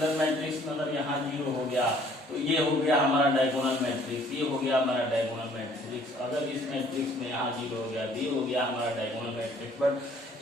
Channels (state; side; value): normal; both; correlation 0.58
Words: मैट्रिक्स में अगर यहाँ 0 हो गया तो ये हो गया हमारा डायगोनल मैट्रिक्स, ये हो गया हमारा डायगोनल मैट्रिक्स। अगर इस मैट्रिक्स में यहाँ 0 हो गया तो ये हो गया हमारा डायगोनल मैट्रिक्स। बट